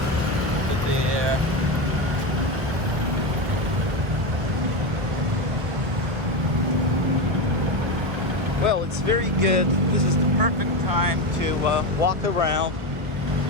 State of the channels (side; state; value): left; late; 1.2 ms